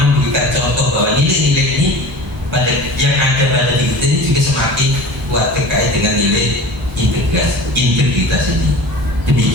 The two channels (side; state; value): both; normal; correlation 0.38